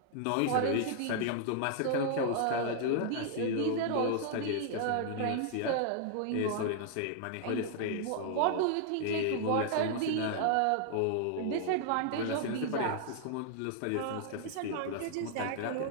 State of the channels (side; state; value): both; different; correlation 0.00